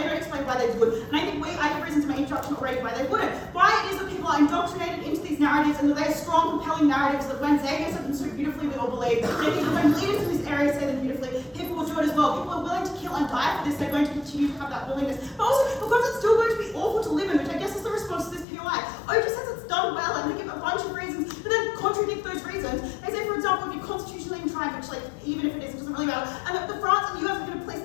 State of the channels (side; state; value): right; drops out; at 18.4 s